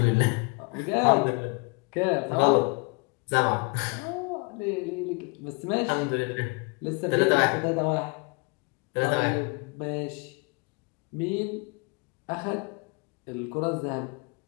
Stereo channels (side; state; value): right; quieter; 30.7 dB